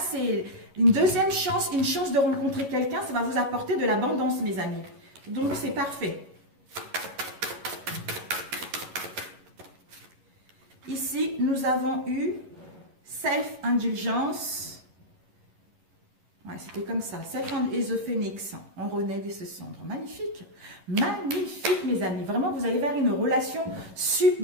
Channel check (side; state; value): left; late; 11 ms